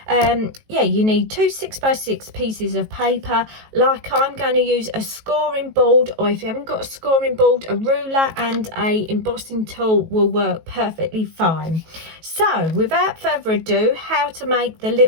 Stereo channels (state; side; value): late; left; 18 ms